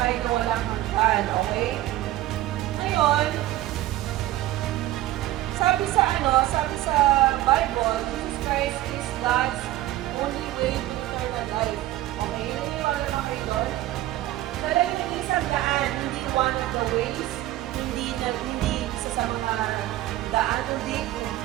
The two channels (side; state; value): left; quieter; 15.3 dB